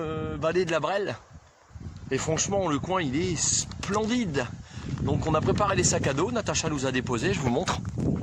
vallée de la Brelle. Et franchement, le coin, il est splendide. Donc on a préparé les sacs à dos. Natacha nous a déposé, je vous montre.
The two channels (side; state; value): both; identical; correlation 1.00